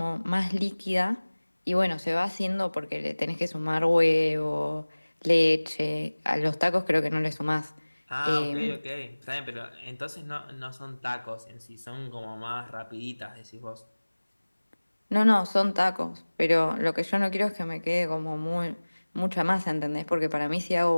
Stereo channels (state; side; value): inverted; both; correlation -1.00